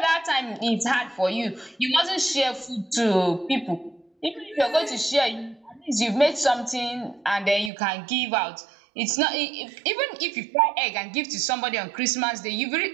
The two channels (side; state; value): left; drops out; at 7.7 s